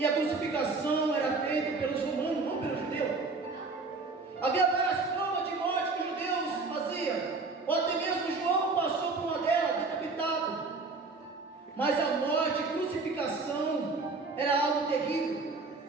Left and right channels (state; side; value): quieter; left; 4.0 dB